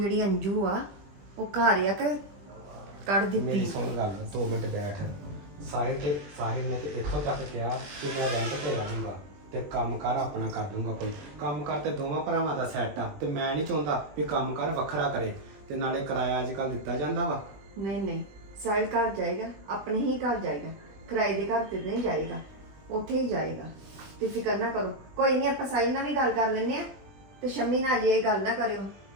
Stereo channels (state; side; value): late; left; 20 ms